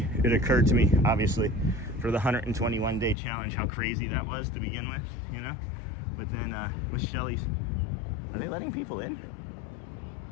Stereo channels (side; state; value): right; drops out; at 3.2 s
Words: obviously, for the 121 day challenge, how crazy that was to begin with, you know? But then with Shelly's, are they letting people in?